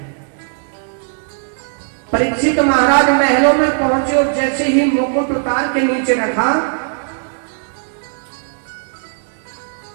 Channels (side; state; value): left; silent; digital silence